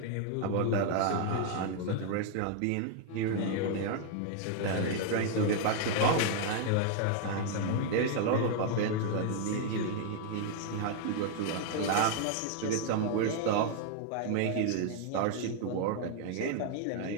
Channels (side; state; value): both; different; correlation 0.00